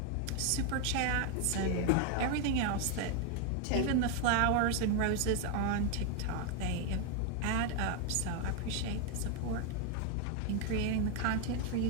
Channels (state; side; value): different; both; correlation 0.02